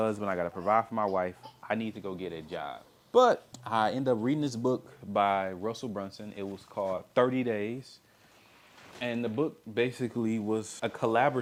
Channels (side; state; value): both; identical; correlation 1.00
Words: I got to provide for my wife. I need to go get a job. But I ended up reading this book by Russell Brunson. It was called 30 Days. And the book basically was a